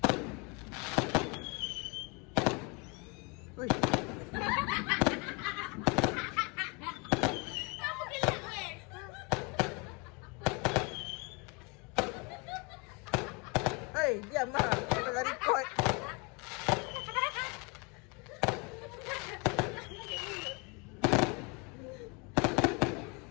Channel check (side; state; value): right; quieter; 30.7 dB